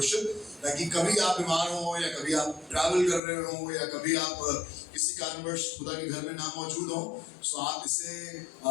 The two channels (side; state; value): right; drops out; at 3.2 s